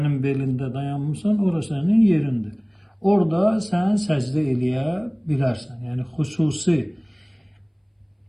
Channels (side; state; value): both; identical; correlation 1.00